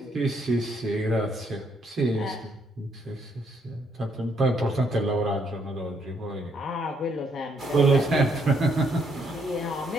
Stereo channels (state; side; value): normal; both; correlation 0.72